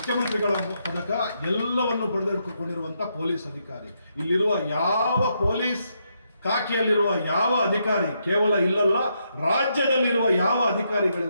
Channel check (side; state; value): both; inverted; correlation -0.79